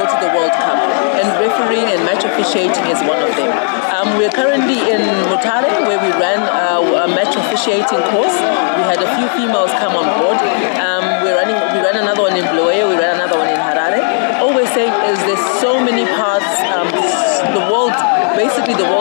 to the World Cup, and refereeing and match officiating is one of them. We're currently in Mutare, where we ran a match officiating course. We had a few females come on board. We ran another one in Bulawayo, we ran another one in Harare. Always saying is there's so many paths. Basically the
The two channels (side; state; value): right; silent; 62 dB below the other